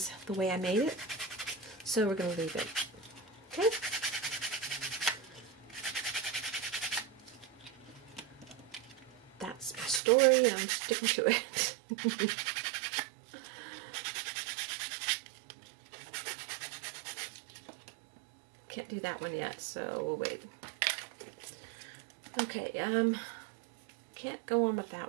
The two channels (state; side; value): drops out; left; at 10.0 s